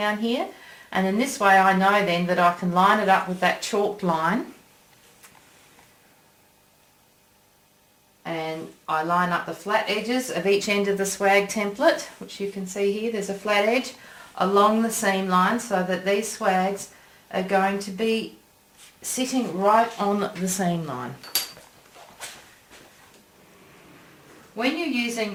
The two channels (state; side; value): identical; both; correlation 1.00